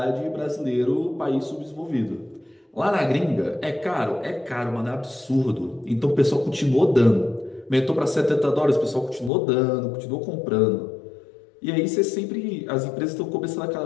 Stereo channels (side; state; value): right; drops out; at 9.3 s